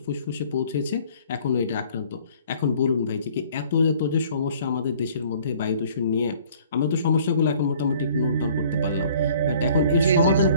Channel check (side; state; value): both; inverted; correlation -0.55